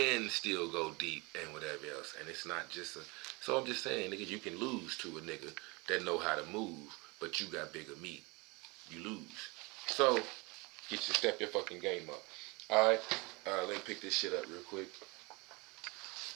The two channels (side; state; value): left; quieter; 26.8 dB